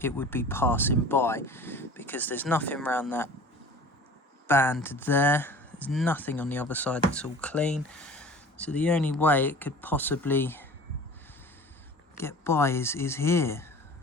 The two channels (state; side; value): normal; both; correlation 0.42